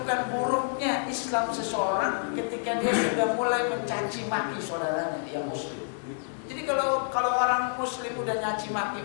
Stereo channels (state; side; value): silent; right; digital silence